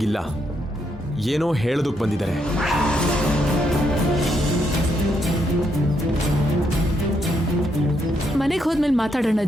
ಏನೋ ಹೇಳೋದಕ್ಕೆ ಬಂದಿದ್ದಾರೆ. ಮನೆಗೆ ಹೋದ್ಮೇಲೆ ಮಾತಾಡೋಣ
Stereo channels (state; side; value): normal; both; correlation 0.77